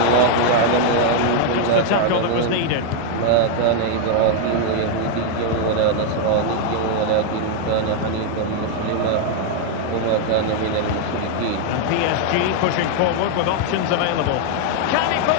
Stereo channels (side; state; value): both; different; correlation 0.00